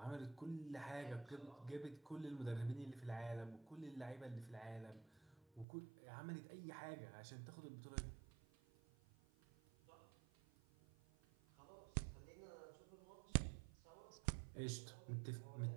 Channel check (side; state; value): left; drops out; at 5.7 s